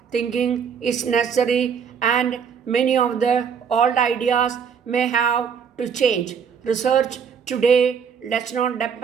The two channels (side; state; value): left; quieter; 6.8 dB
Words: thinking is necessary, and many of the old ideas may have to change. Research today does not